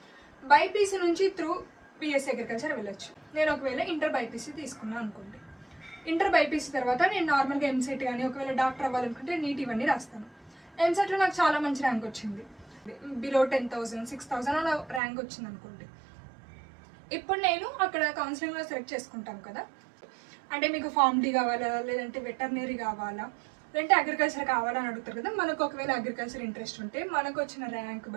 బైపీసీ నుంచి త్రూ బీఎస్సీ అగ్రికల్చర్ వెళ్ళొచ్చు. నేను ఒకవేళ ఇంటర్ బైపీసీ తీసుకున్నాను అనుకోండి. ఇంటర్ బైపీసీ తర్వాత నేను నార్మల్గా ఎంసెట్ కానీ ఒకవేళ డాక్టర్ అవ్వాలనుకుంటే నీట్ ఇవన్నీ రాస్తాను. ఎంసెట్లో నాకు చాలా మంచి ర్యాంక్ వచ్చింది, బిలో 10,000, 6,000 అలా ర్యాంక్ వచ్చింది అనుకోండి. ఇప్పుడు నేను అక్కడ కౌన్సిలింగ్లో సెలెక్ట్ చేసుకుంటాం కదా, అంటే మీకు ఫార్మ్ డి కావాలా, లేదంటే వెటర్నరీ కావాలా, లేదంటే అగ్రికల్చర్ కావాలా అని అడుగుతారు కదా. మనకు ఒకవేళ అగ్రికల్చర్ ఇంట్రెస్ట్ ఉంటే మనకు వచ్చిన ర్యాంక్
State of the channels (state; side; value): drops out; left; at 15.0 s